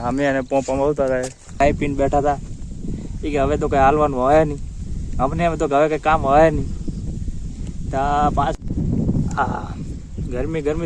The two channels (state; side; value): identical; both; correlation 1.00